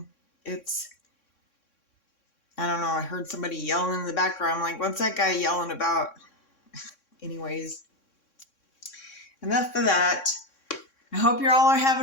I don't know, I heard somebody yelling in the background. I'm like, what's that guy yelling about? Anyways, enough of that. I hope you're all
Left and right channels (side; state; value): right; late; 3.6 ms